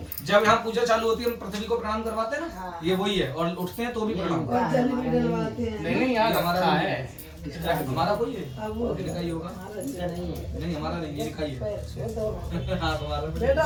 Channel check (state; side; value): identical; both; correlation 1.00